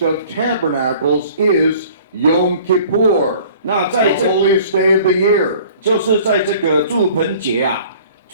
of Tabernacles is Yom Kippur, 那 the 在这 holiest day of the year. 就是在这个祝棚节啊，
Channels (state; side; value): inverted; both; correlation -0.50